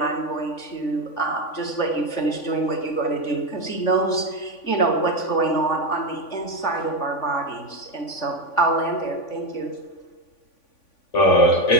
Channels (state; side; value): late; right; 3.5 ms